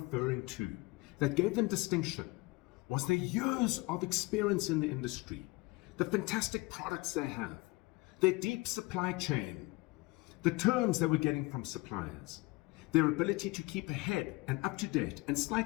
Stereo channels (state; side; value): quieter; right; 23.2 dB